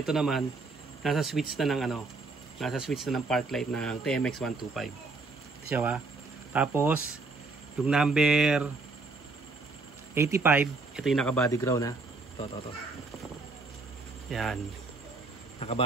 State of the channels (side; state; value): left; quieter; 3.7 dB